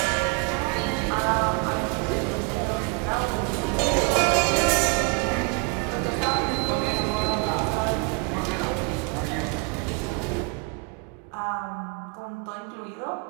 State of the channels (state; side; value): quieter; left; 28.5 dB